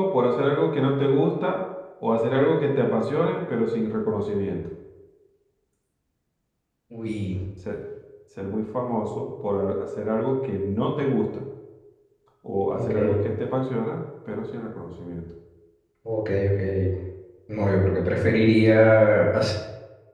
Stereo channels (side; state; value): both; identical; correlation 1.00